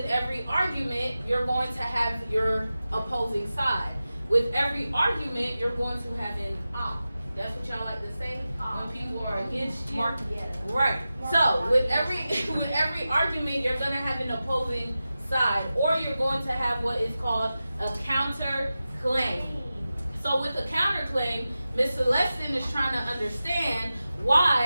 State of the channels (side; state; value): both; inverted; correlation -0.94